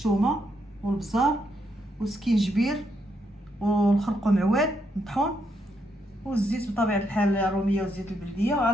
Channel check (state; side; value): normal; both; correlation 0.78